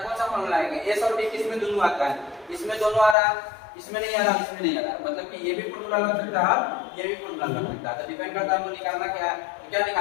सा फॉर्मूला लगाएंगे, एस और टी किसमें दोनों आता है, इसमें दोनों आ रहा है, इसमें नहीं आ रहा, इसमें नहीं आ रहा, मतलब कि ये भी फॉर्मूला लग सकता है, ये भी फॉर्मूला लग सकता है। तो डिपेंड करता है हमको निकालना क्या है, क्या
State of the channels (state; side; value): drops out; right; at 3.2 s